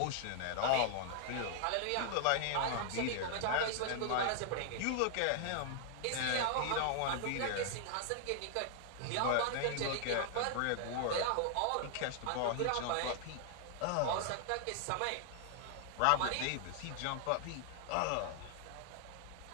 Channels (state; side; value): different; both; correlation 0.00